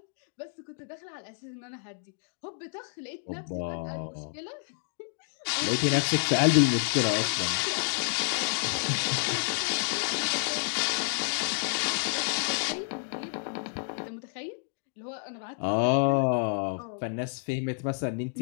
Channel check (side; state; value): right; silent; 58 dB below the other